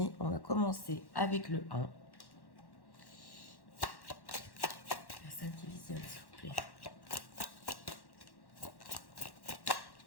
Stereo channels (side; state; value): right; late; 1.1 ms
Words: on va commencer avec le 1. Personne qui visionne, s'il vous plaît.